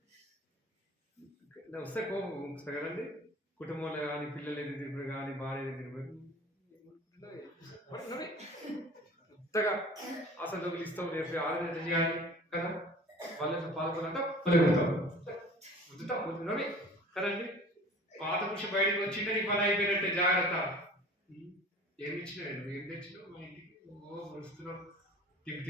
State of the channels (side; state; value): both; normal; correlation 0.44